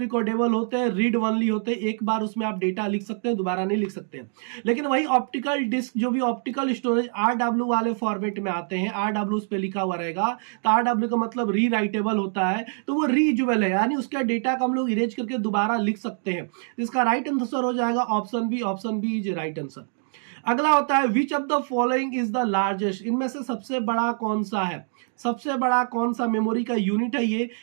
होते हैं, रीड ओनली होते हैं, एक बार उसमें आप डेटा लिख सकते हैं, दोबारा नहीं लिख सकते हैं। लेकिन वही ऑप्टिकल डिस्क जो भी ऑप्टिकल स्टोरेज RW वाले फॉर्मेट में आते हैं, RW उस पे लिखा हुआ रहेगा, तो RW का मतलब री राइटेबल होता है, तो वो रीयूजेबल है, यानी उसका डेटा को हम लोग इरेज करके दोबारा लिख सकते हैं। इसका राइट आंसर हो जाएगा option B. Option B is right answer. अगला होता है which of the following is the largest. इनमें से सबसे बड़ा कौन सा है? सबसे बड़ा कौन सा मेमोरी का यूनिट है ये?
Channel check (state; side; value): silent; left; 58 dB below the other